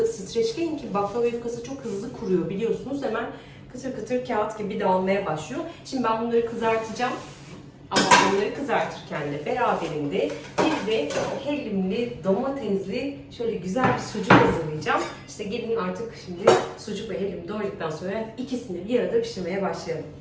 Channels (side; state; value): both; identical; correlation 1.00